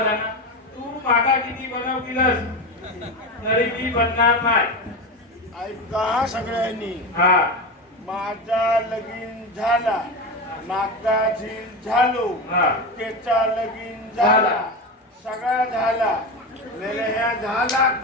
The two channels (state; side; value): normal; both; correlation 0.20